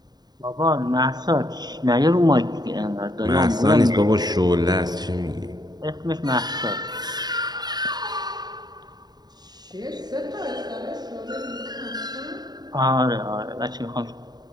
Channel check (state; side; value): late; left; 0.20 ms